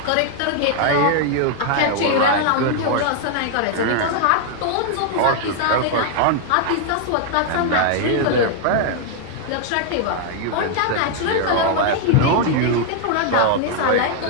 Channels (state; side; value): different; both; correlation 0.00